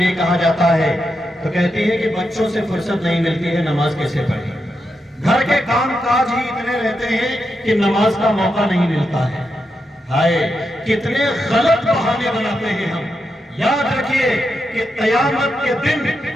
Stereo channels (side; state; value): both; normal; correlation 0.85